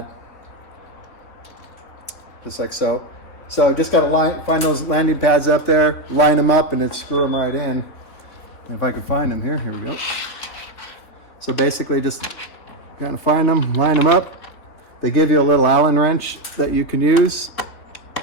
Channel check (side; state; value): right; late; 3.4 ms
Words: just like so. So just got to find those landing pads up there, line them up, and then screw them right in. And if I can find them here we go. So basically just got to find them, line them up. They give you a little Allen wrench that you can use.